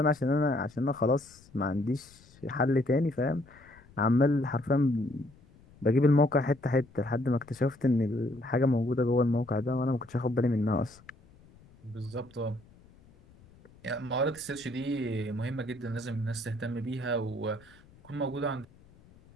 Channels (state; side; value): noise; left; rumble, 26 dB below the sound